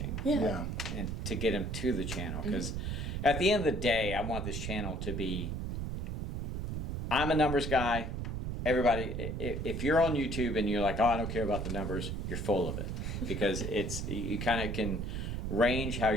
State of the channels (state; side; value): noise; right; rumble, 3 dB below the sound